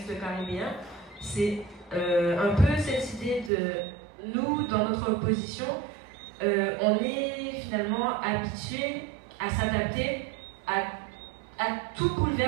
caribéen, c'est un peu cette idée de nous, dans notre position, on est finalement habitué à s'adapter à tout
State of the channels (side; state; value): left; drops out; at 3.5 s